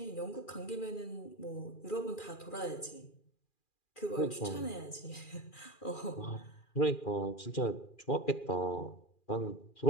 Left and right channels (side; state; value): right; late; 2.4 ms